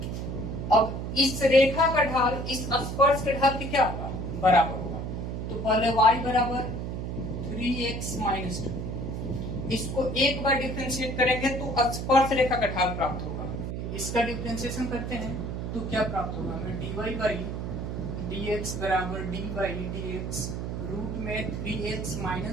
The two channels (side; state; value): right; noise; hum, 4 dB below the sound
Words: अब इस रेखा का ढाल इस स्पर्श के ढाल के क्या होगा, बराबर होगा। तो पहले y बराबर 3x माइनस 2, इसको एक बार डिफरेंशिएट करेंगे तो स्पर्श रेखा का ढाल प्राप्त होगा। इसका डिफरेंशिएशन करते हैं तो क्या प्राप्त होगा, हमें dy बाई dx बराबर d बाई dx रूट में 3x